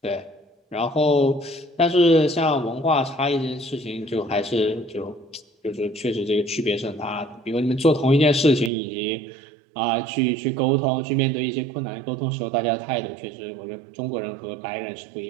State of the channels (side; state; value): left; drops out; at 8.7 s